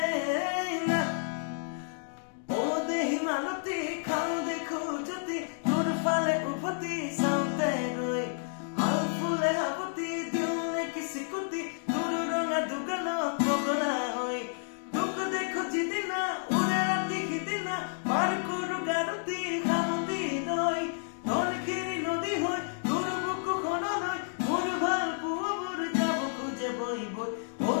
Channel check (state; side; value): silent; right; digital silence